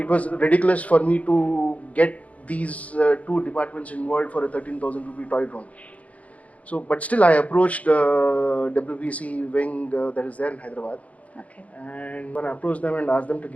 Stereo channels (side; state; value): right; late; 0.067 ms